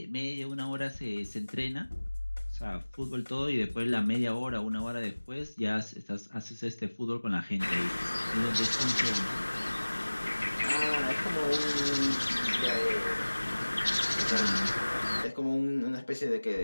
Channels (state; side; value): inverted; both; correlation -1.00